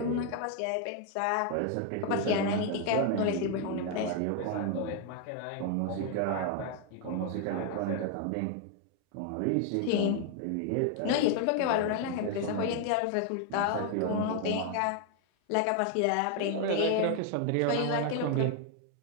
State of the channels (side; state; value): both; different; correlation 0.00